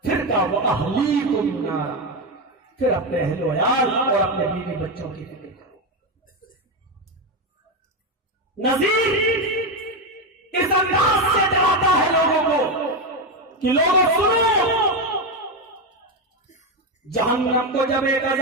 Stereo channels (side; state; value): both; normal; correlation 0.10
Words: پھر کہا وہ اہلیکم نارا، پھر اپنے اہل و عیال اور اپنے بیوی بچوں کی فکر کرو۔ نذیر اس انداز سے ڈراتا ہے لوگوں کو کہ لوگوں سنو، جہنم کو جب